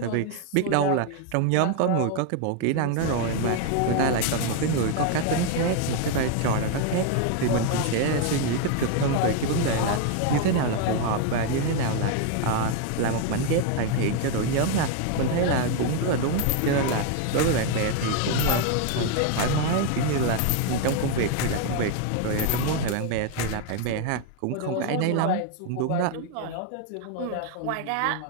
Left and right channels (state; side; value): different; both; correlation 0.01